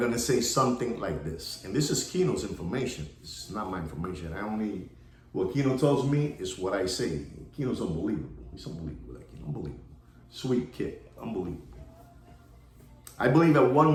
say something like this. And this is Kino's information. This is not my information. What Kino tells me is what I say. Kino's unbelievable. He's unbelievable, like unbelievable. Sweet kid, unbelievable. I believe at one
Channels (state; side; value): identical; both; correlation 1.00